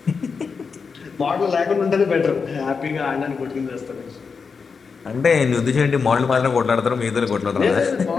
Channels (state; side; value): quieter; right; 5.3 dB